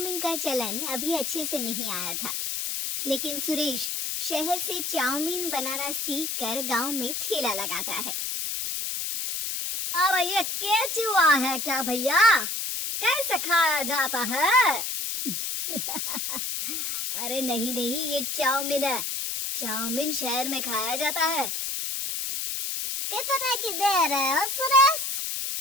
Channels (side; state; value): left; noise; hiss, 2 dB below the sound